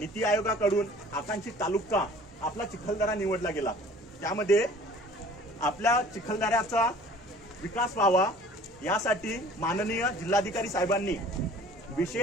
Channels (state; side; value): normal; both; correlation 0.49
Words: आयोगाकडून आकांक्षित तालुका आपला चिखलदरा निवडला गेला. त्यामध्ये आपल्या चिखलदऱ्याचा विकास व्हावा यासाठी माननीय जिल्हाधिकारी साहेबांनी